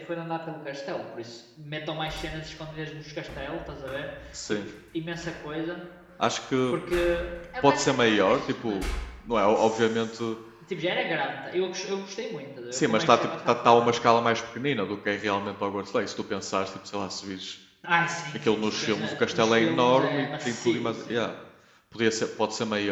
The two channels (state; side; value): identical; both; correlation 1.00